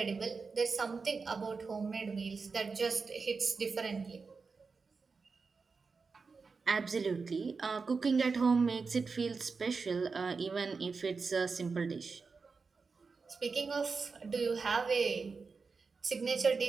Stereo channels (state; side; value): quieter; left; 4.7 dB